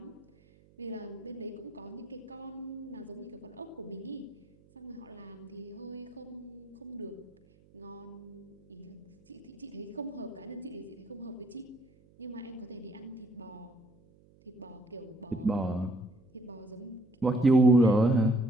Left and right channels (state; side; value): noise; right; hum, 28 dB below the sound